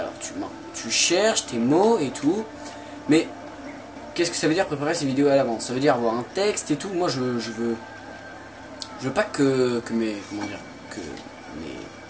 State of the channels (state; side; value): identical; both; correlation 1.00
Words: tu cherches tes mots et tout, mais qu'est-ce que ça veut dire préparer ces vidéos à l'avance? Ça veut dire avoir un texte et tout. Moi je veux pas que